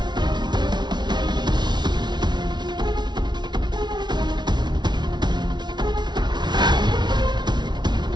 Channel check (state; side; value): late; left; 0.21 ms